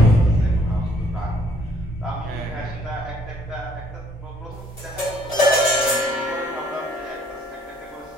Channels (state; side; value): normal; both; correlation 0.63